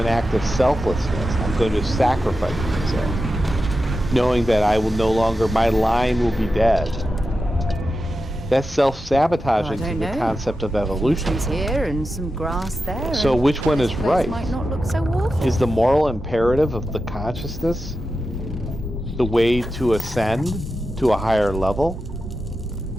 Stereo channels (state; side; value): normal; both; correlation 0.90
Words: act of selflessness, I'm going to sacrifice myself, knowing that I will no longer, my line will be dead. That's self-sabotaging to the concept of evolution. Trees here and some grass there. So which one is right? Might not look so awful. Is the moral imperative of the consciousness the way to ascend to a higher level?